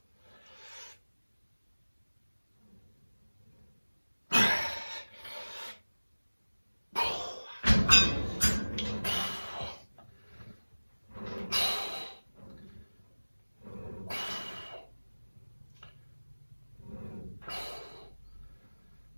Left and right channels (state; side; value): inverted; both; correlation -1.00